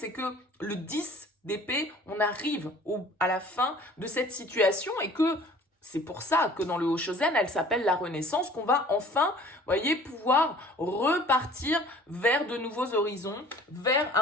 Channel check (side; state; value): both; normal; correlation 0.50